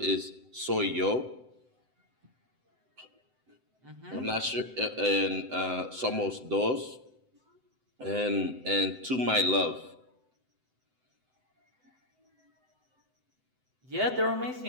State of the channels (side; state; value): left; late; 7.8 ms